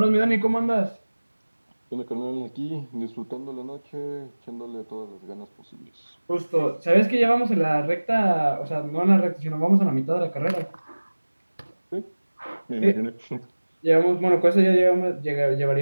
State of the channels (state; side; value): inverted; both; correlation -1.00